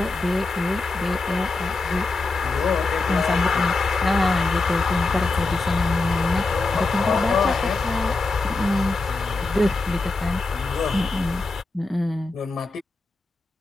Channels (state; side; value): quieter; right; 3.4 dB